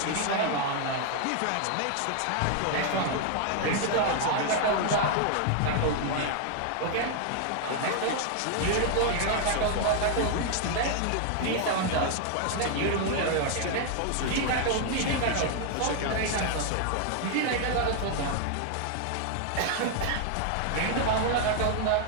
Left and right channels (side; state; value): both; different; correlation 0.00